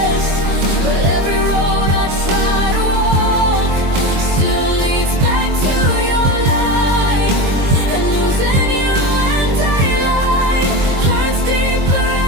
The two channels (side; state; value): left; late; 22 ms